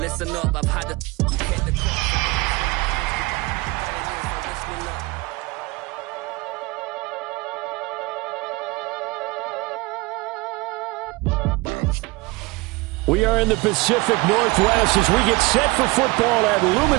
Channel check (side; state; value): left; quieter; 23.3 dB